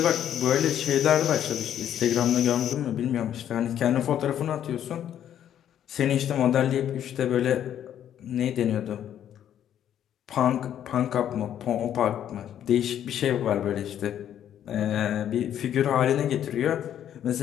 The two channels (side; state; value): right; quieter; 10.3 dB